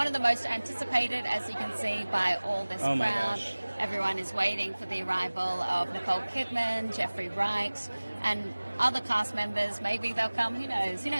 of the most anticipated, as you can see, by all this Oh my crowd. gosh. Everyone is waiting for the arrival of Nicole Kidman, Jeffrey Wright, and other cast members. Maybe they'll come. Who knows? Who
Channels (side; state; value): both; inverted; correlation -1.00